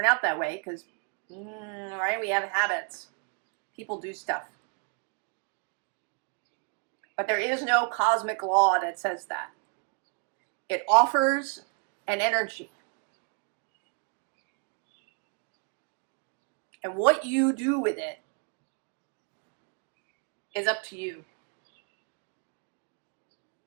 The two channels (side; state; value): left; quieter; 39.3 dB